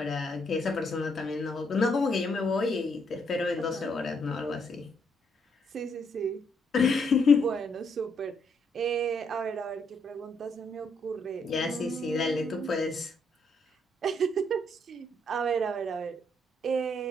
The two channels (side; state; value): both; normal; correlation 0.74